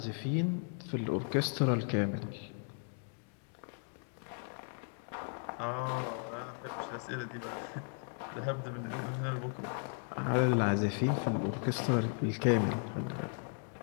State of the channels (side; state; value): right; silent; 54 dB below the other